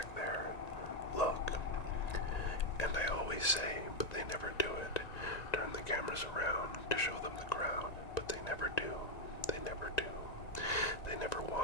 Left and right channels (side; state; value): right; late; 1.9 ms